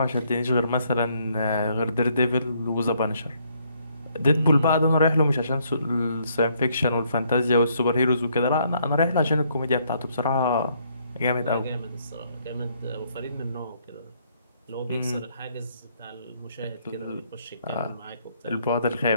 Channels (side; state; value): both; inverted; correlation -0.69